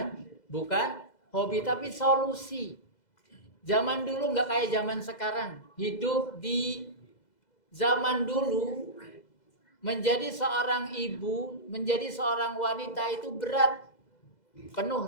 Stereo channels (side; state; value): right; late; 2.0 ms